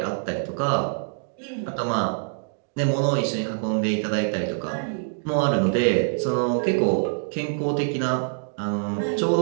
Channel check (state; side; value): silent; left; digital silence